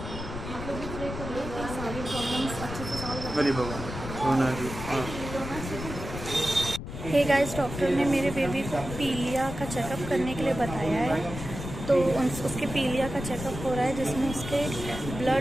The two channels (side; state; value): left; noise; rumble, 8 dB below the sound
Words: आप लोग भी प्रे करिए कि सारी प्रॉब्लम्स अच्छे से सॉल्व हो जाए। हे गाइस, डॉक्टर ने मेरे बेबी को पीलिया का चेकअप करने के लिए बताया है। तो उसके पीलिया का चेकअप हो रहा है जिसमें उसके